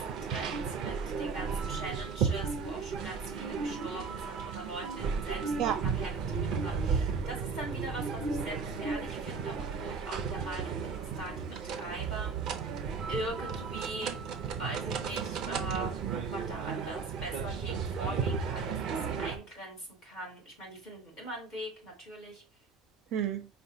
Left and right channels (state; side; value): quieter; left; 4.9 dB